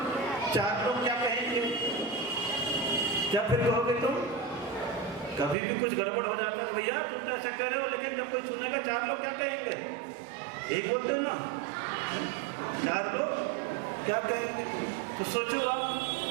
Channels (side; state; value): left; drops out; at 5.6 s